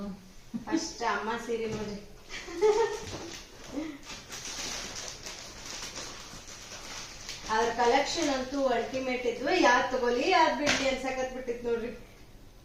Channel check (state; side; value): identical; both; correlation 1.00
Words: ಫಸ್ಟ್ ಅಮ್ಮ ಸೀರೆ ನೋಡ್ರಿ. ಅದ್ರ ಕಲೆಕ್ಷನ್ ಅಂತೂ ಅಲ್ಟಿಮೇಟ್ ಇದ್ವು. ಯಾವ್ದ್ ತಗೋಲಿ ಯಾವ್ದ್ ಬಿಡ್ಲಿ ಅನ್ಸಕತ್ ಬಿಟ್ಟಿತ್ ನೋಡ್ರಿ.